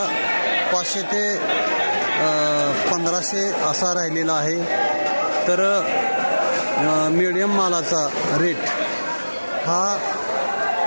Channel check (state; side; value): inverted; both; correlation -1.00